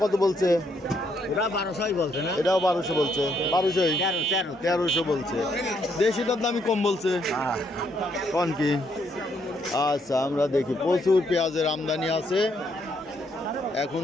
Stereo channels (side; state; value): both; normal; correlation 0.73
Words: কত বলছে? 1200 বলছে না? এটাও 1200 বলছে। 1300 বলছে। দেশিটার দামই কম বলছে কোন কি? আচ্ছা, আমরা দেখি। প্রচুর পেঁয়াজের আমদানি আছে। এখন